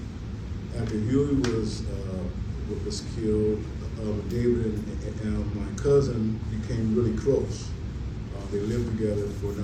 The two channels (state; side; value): identical; both; correlation 1.00